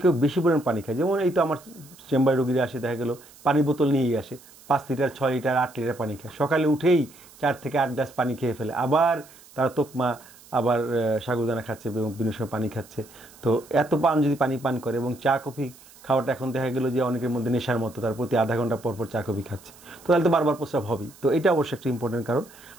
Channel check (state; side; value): noise; right; hiss, 23 dB below the sound